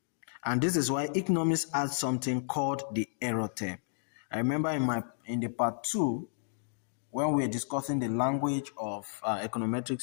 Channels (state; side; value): silent; right; digital silence